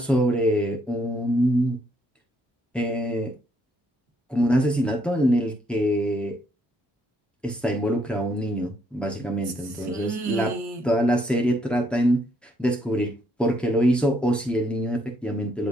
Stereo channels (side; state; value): both; normal; correlation 0.72